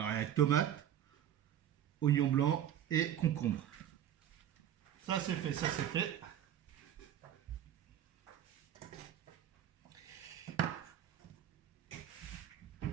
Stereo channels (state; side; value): quieter; left; 10.7 dB